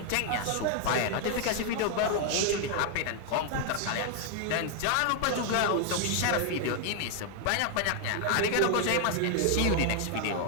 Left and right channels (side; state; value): both; different; correlation 0.00